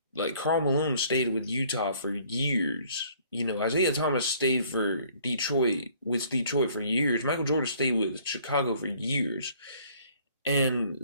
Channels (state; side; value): inverted; both; correlation -0.58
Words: Karl Malone stayed with Utah for years. Isaiah Thomas stayed with Detroit for years. Michael Jordan stayed with Chicago for years, and